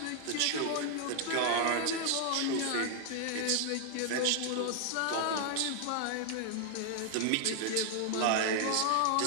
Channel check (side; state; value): both; different; correlation 0.00